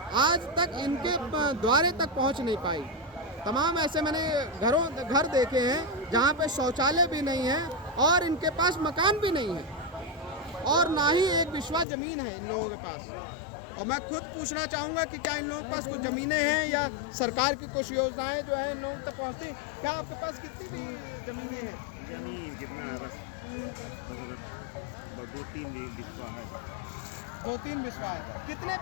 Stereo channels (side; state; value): right; drops out; at 11.9 s